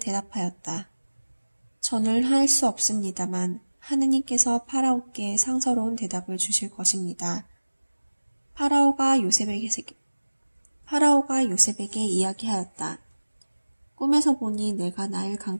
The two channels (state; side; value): inverted; both; correlation -1.00